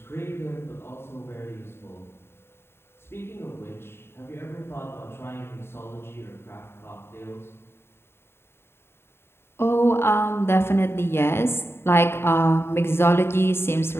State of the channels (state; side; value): late; right; 0.11 ms